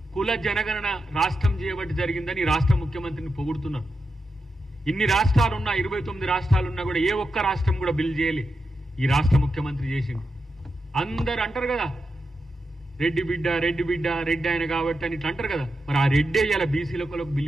కుల జనగణన రాష్ట్రం చేయబట్టి జరిగిందని రాష్ట్ర ముఖ్యమంత్రిని పొగుడుతున్నారు. ఇన్ని రాష్ట్రాలున్నా, 29 రాష్ట్రాలున్నా కూడా ఏ ఒక్క రాష్ట్రం కూడా బిల్ చేయలే, ఈ రాష్ట్ర ముఖ్యమంత్రి చేసింది. అందరు అంటారు కదా రెడ్డి బిడ్డ, రెడ్డి బిడ్డ, రెడ్డి ఆయన కాబట్టి అని ఇట్లా అంటారు కదా. మరి ఆ రెడ్డే ఇలా బీసీలకు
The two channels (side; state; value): both; normal; correlation 0.88